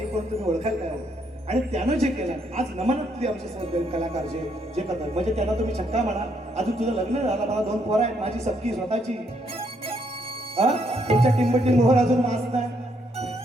कोण तुम्ही ओळखाल काय? आणि त्यानं जे केलं आज नमनातली आमचे कलाकार जे करतात, म्हणजे त्यांना तुम्ही छक्का म्हणा. अजून तुझं लग्न झालं, मला 2 पोरं आहेत, माझी सबकी स्वतःची. तुमच्या टिंबटिंग मोहर अजून मास नाही,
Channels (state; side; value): normal; both; correlation 0.73